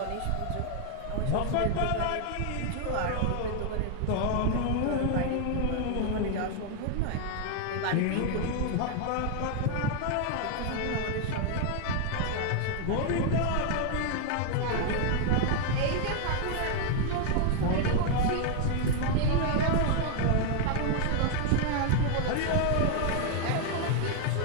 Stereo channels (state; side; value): different; both; correlation 0.00